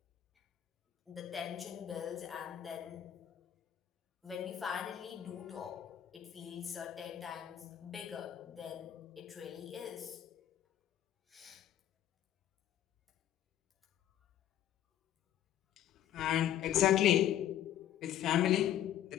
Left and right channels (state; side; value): quieter; right; 11.3 dB